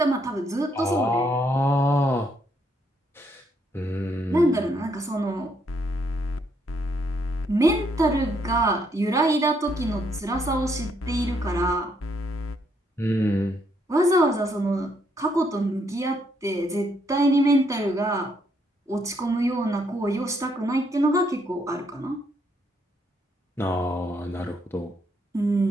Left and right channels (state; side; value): normal; both; correlation 0.73